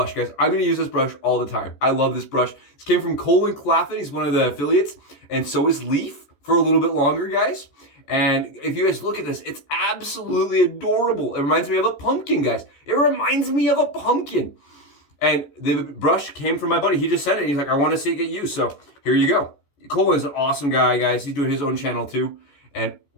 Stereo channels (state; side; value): late; right; 14 ms